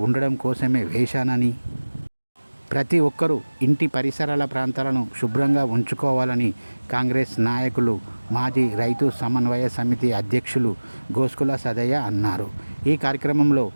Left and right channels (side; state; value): both; inverted; correlation -1.00